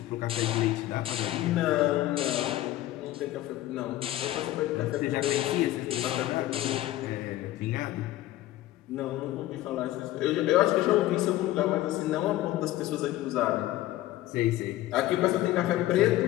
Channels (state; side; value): quieter; right; 15.2 dB